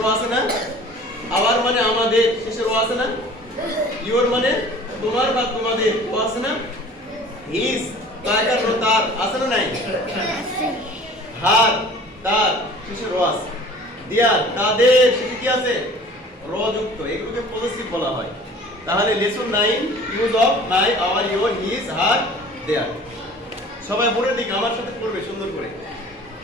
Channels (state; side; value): normal; both; correlation 0.47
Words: র আছে না? আওয়ার মানে আমাদের, শেষে র আছে না? ইওর মানে তোমার বা তোমাদের, ও আছে না? হিজ তার আছে না নাই? হার তার, শেষে র আছে। দেয়ার তাদের, শেষে কি আছে? র যুক্ত। এগুলোকে পজেসিভ বলা হয়। তাহলে lesson 9 use of my our your his her their. সবাই বোর্ডের দিকে আমার সাথে পড়বে সুন্দর করে।